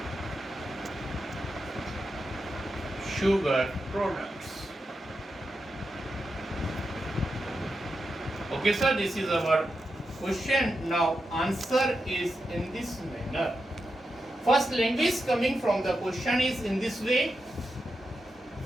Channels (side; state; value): both; normal; correlation 0.88